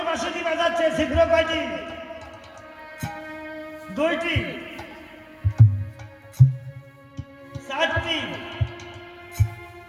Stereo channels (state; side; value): identical; both; correlation 1.00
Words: বাঁশিটি বাজাচ্ছে, ছিদ্র কয়টি? 2টি, 4টি,